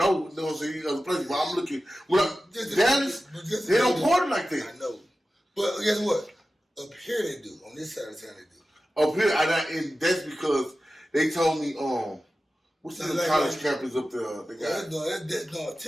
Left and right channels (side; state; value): both; normal; correlation 0.94